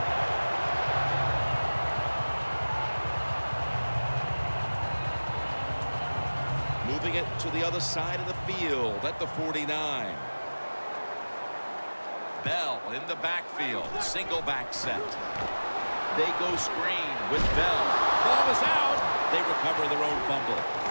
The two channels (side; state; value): both; inverted; correlation -1.00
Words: Moving it to the other side of the field at the 49. Bell in the backfield. Single back set. They go screen with Bell. Ball is out. They recover their own fumble.